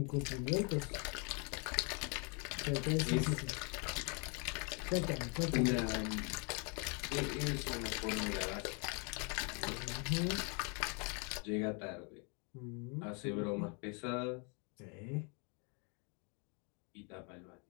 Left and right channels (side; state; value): right; quieter; 34.9 dB